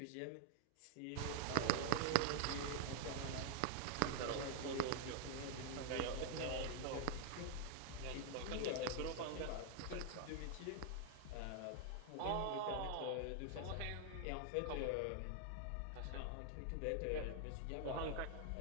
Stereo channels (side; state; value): both; different; correlation 0.00